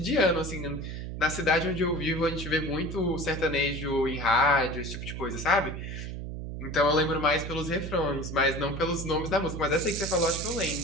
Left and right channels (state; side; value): noise; right; hum, 7 dB below the sound